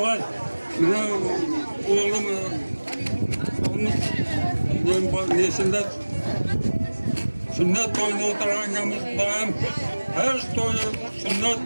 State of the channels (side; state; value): both; inverted; correlation -1.00